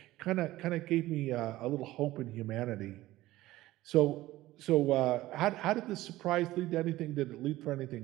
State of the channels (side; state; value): left; quieter; 16.7 dB